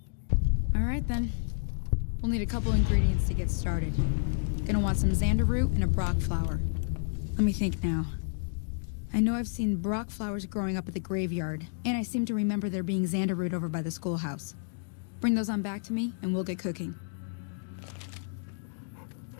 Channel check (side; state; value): right; silent; digital silence